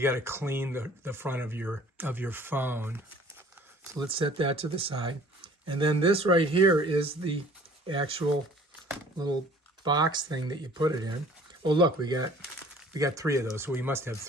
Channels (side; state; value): both; normal; correlation 0.51